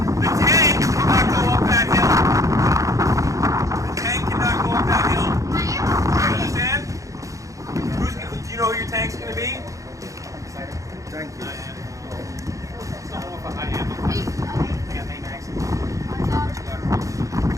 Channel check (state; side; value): late; left; 0.16 ms